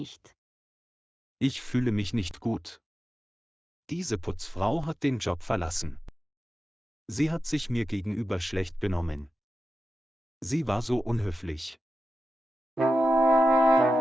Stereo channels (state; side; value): normal; both; correlation 0.91